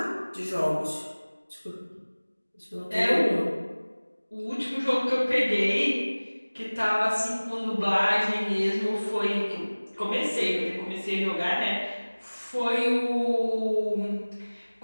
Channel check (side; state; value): both; inverted; correlation -1.00